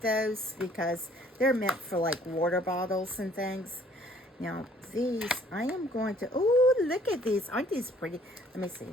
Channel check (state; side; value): normal; both; correlation 0.59